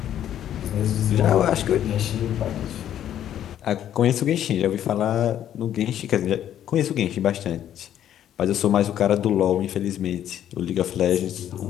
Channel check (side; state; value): right; quieter; 10.8 dB